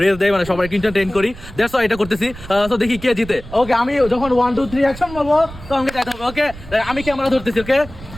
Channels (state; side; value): noise; right; rumble, 15 dB below the sound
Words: রেস দেয়, মানে সবাই এন্টারটেইন করি, দ্যাটস ওয়াই এটা করতেছি। তো দেখি কে জিতে। ওকে, আমি যখন 1 2 3 অ্যাকশন বলবো তো আমাকে যাইতে হবে। ওকে, আমি ক্যামেরা ধরতেছি। ওকে,